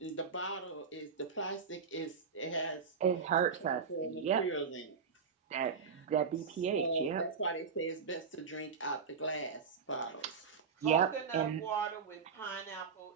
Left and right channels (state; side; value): quieter; left; 5.8 dB